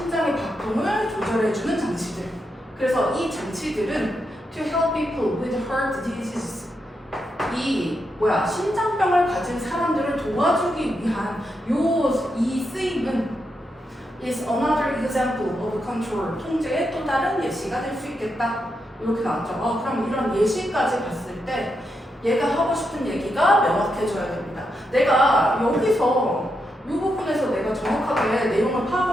박동을 조절해주는 장치들. 그래서 이 장치들은 to help people with heart disease. 심장병을 가진 사람들을 도와주기 위한 이 쓰임은 is another example of control. 통제의 또 다른 예시가 될 수 있겠다. 이렇게 나왔죠. 그럼 이런 예시까지 봤을 때 얘가 하고 싶은 얘기가 명확해져야 됩니다. 내가 여기서 이 부분에서 내가 정확하게 내용을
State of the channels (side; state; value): both; normal; correlation 0.84